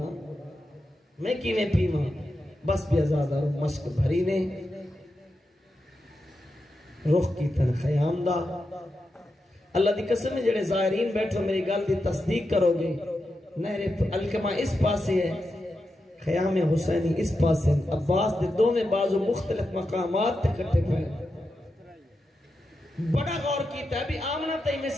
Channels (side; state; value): both; normal; correlation 0.88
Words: میں کیویں پیواں بس بھی آزادار مشک بھری نے رخ کی تن خیام دا اللہ دی قسم ہے جڑے ظاہرین بیٹھو میری گل دی تصدیق کرو گے نہر الکما اس پاسے ہے خیام حسینی اس پاسے عباس دے دونوں بازو مختلف مقامات تے کٹے پائے بڑا غور کیتا ہے بھی آمنہ تے میں